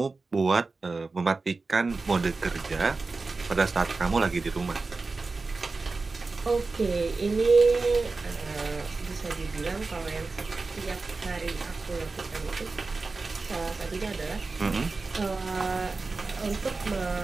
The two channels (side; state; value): left; quieter; 3.9 dB